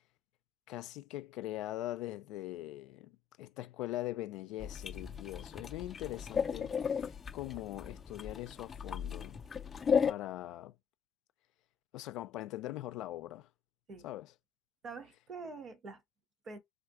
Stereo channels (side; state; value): right; quieter; 7.6 dB